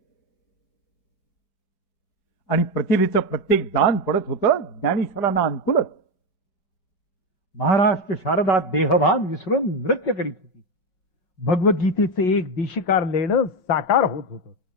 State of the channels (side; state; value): right; late; 5.4 ms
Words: आणि प्रतिभेचं प्रत्येक दान पडत होतं ज्ञानेश्वरांना अनुकूलच. महाराष्ट्र शारदा देहभान विसरून नृत्य करीत होती. भगवद्गीतेचे एक देशिकार लेणं साकार होत होतं.